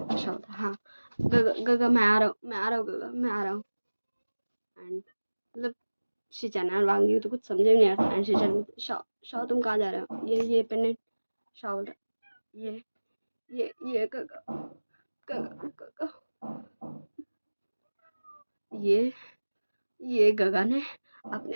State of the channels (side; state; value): both; inverted; correlation -1.00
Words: शाओ था हाँ गगा मैं आ रहा हूँ गगा मैं आ रहा हूँ। एंड मतलब शीचैन एंड वांग जी तो कुछ समझ में नहीं आता एंड शीचैन शाओ शाओ तुम कहाँ जा रहे हो? ये पेंडेंट। शाओ बोलता ये ये गगा गगा गगा ये ये गगा ने अपने